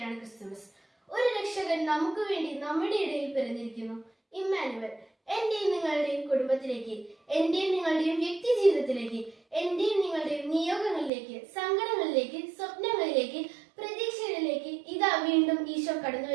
ക്രിസ്തുമസ്. ഒരു രക്ഷകൻ നമുക്ക് വേണ്ടി നമ്മുടെ ഇടയിൽ പിറന്നിരിക്കുന്നു. ഇമ്മാനുവൽ. എന്റെയും നിങ്ങളുടെയും കുടുംബത്തിലേക്ക്, എന്റെയും നിങ്ങളുടെയും വ്യക്തി ജീവിതത്തിലേക്ക്, എന്റെയും നിങ്ങളുടെയും നിയോഗങ്ങളിലേക്ക്, സങ്കടങ്ങളിലേക്ക്, സ്വപ്നങ്ങളിലേക്ക്, പ്രതീക്ഷകളിലേക്ക് ഇതാ വീണ്ടും ഈശോ കടന്നു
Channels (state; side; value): drops out; left; at 11.1 s